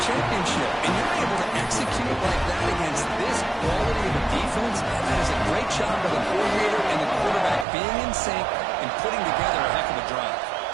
championship. And you're able to execute like that against this quality of a defense. That is a great job by the coordinator and the quarterback being in sync and putting together a heck of a drive.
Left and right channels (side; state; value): left; drops out; at 7.7 s